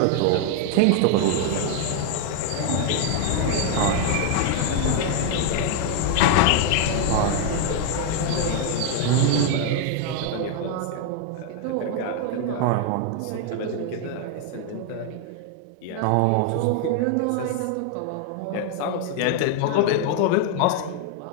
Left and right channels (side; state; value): both; different; correlation 0.00